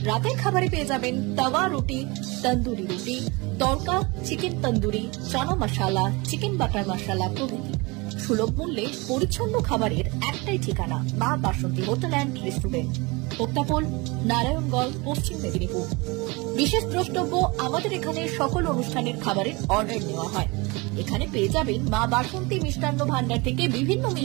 রাতের খাবারে পেয়ে যাবেন তাওয়া রুটি, তন্দুরি রুটি, তড়কা, চিকেন তন্দুরি, চানা মশালা, চিকেন বাটার মশালা প্রভৃতি। সুলভ মূল্যে পরিচ্ছন্ন খাবারের একটাই ঠিকানা, মা বাসন্তী হোটেল অ্যান্ড রেস্টুরেন্ট, উত্তাপন, নারায়ণগড়, পশ্চিম মেদিনীপুর। বিশেষ দ্রষ্টব্য, আমাদের এখানে সকল অনুষ্ঠানের খাবারের অর্ডার নেওয়া হয়। এখানে পেয়ে যাবেন মা বাসন্তী মিষ্টান্ন ভান্ডার থেকে বিভিন্ন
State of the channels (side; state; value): left; quieter; 25.9 dB